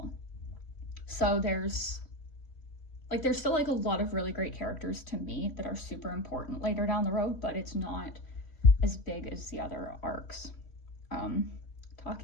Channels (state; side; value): late; right; 3.4 ms